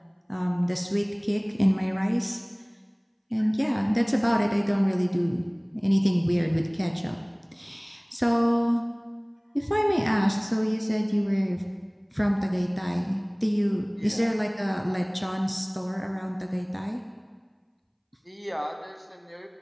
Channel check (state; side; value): identical; both; correlation 1.00